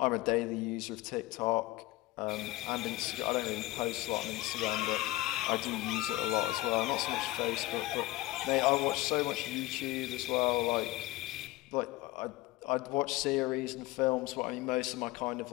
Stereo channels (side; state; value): right; quieter; 18.7 dB